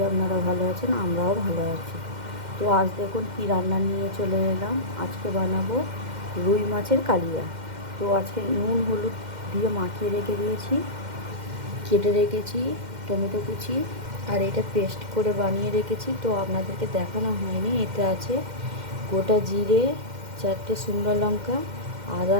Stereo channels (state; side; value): late; left; 2.1 ms